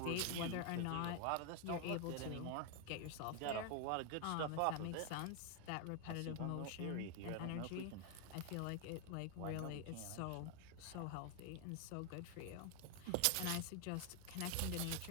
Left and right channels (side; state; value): both; different; correlation 0.00